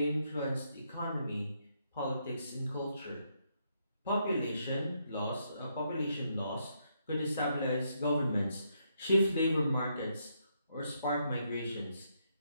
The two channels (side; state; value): both; inverted; correlation -0.77